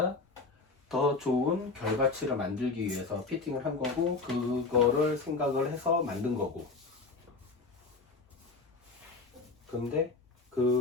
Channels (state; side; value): quieter; right; 3.9 dB